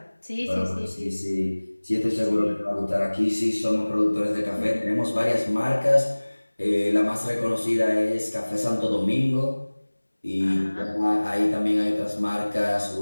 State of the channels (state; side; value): inverted; both; correlation -1.00